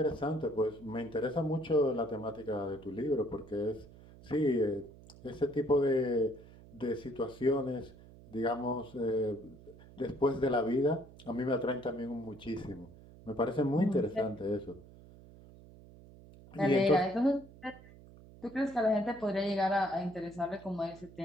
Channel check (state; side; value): noise; right; hum, 20 dB below the sound